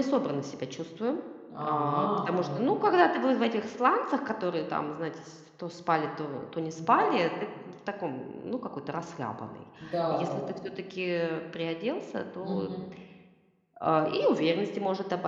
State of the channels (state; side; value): identical; both; correlation 1.00